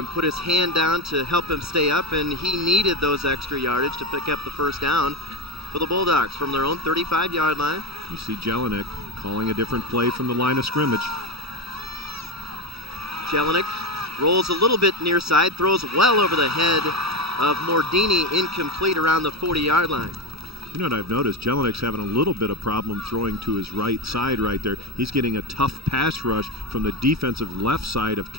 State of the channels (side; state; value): left; late; 0.77 ms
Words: put his hand down to help him stay up, and he needed those extra yardage to pick up the first down for the Bulldogs from their own 35-yard line. You see Jelinek calling a different play from the line of scrimmage. Jelinek rolls a little bit near side, throws well over the head of Mordini, incomplete around the 40-yard line. You know what I've noticed? Jelinek's having a little bit of problem throwing to his right side right there. He's getting a tough pass rush from the defensive left side of